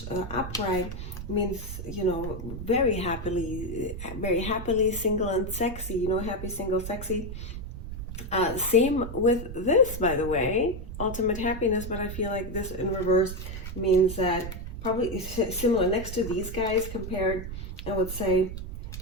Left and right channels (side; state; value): right; noise; rumble, 8 dB below the sound